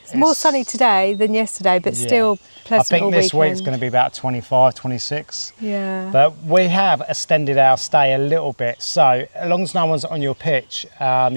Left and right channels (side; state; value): both; inverted; correlation -1.00